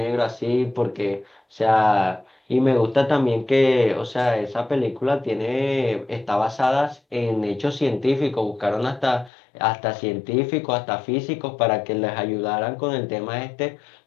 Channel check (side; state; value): right; drops out; at 9.3 s